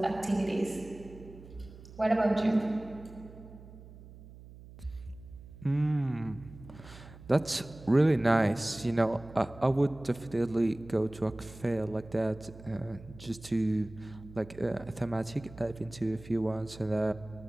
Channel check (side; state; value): right; noise; hum, 18 dB below the sound